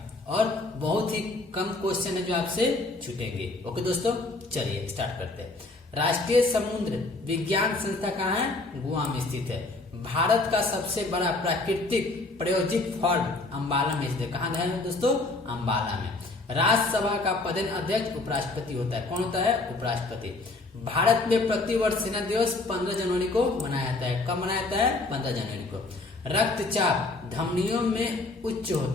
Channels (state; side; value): quieter; right; 3.2 dB